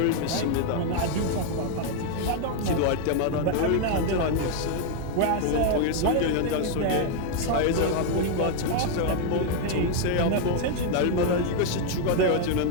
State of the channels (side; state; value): both; different; correlation 0.00